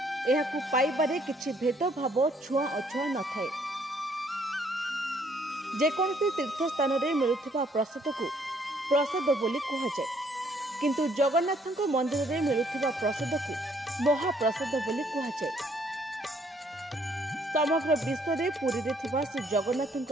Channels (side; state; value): both; normal; correlation 0.66